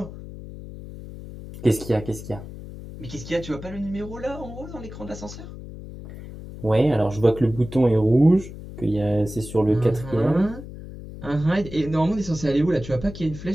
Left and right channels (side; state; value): left; noise; hum, 13 dB below the sound